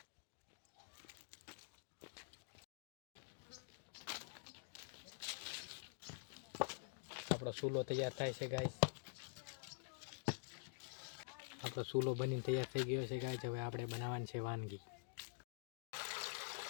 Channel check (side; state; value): right; silent; digital silence